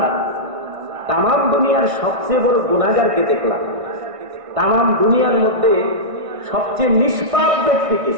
তামাম দুনিয়ার সবচেয়ে বড় গুনাহগারকে দেখলাম, তামাম দুনিয়ার মধ্যে সবচেয়ে নিষ্পাপ ব্যক্তিকে,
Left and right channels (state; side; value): late; left; 1.6 ms